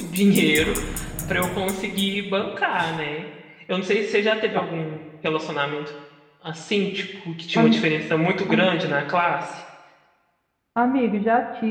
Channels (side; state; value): both; identical; correlation 1.00